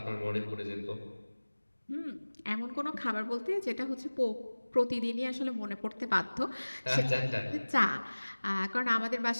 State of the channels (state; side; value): inverted; both; correlation -1.00